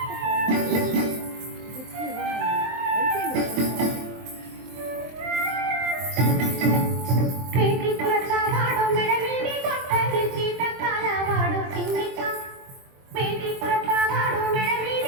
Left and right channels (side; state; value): left; late; 23 ms